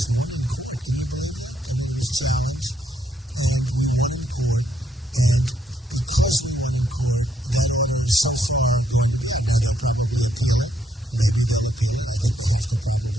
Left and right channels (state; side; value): normal; both; correlation 0.74